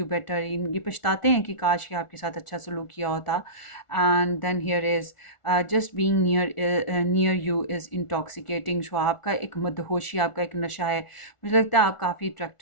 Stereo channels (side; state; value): right; late; 1.4 ms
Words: better, ये पछताते हैं कि काश ये आपके साथ अच्छा सलूक किया होता। And then here is just being near you is intoxicating. So आपका एक मदहोशी, आपका एक नशा है। मुझे लगता है आप काफ़ी